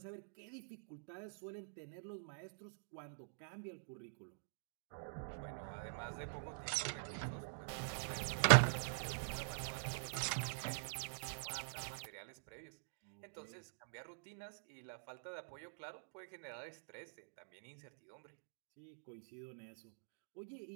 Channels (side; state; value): left; silent; digital silence